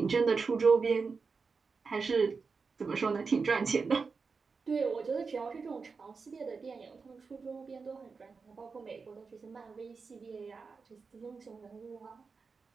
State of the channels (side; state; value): left; quieter; 4.8 dB